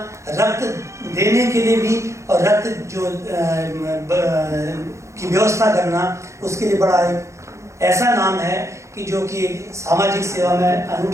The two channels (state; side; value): late; left; 0.14 ms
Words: रक्त देने के लिए भी और रक्त जो की व्यवस्था करना उसके लिए बड़ा एक ऐसा नाम है कि जो कि सामाजिक सेवा में